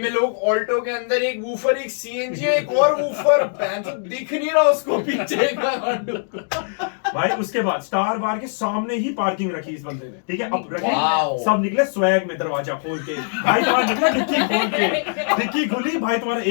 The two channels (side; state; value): right; silent; digital silence